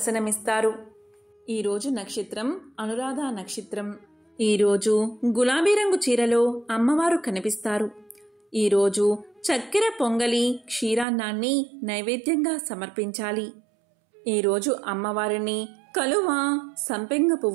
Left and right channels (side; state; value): left; drops out; at 11.1 s